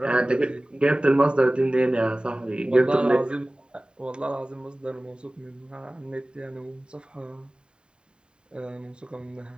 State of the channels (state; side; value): late; left; 0.050 ms